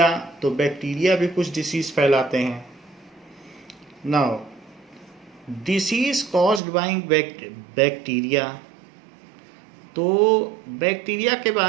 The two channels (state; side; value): drops out; left; at 6.6 s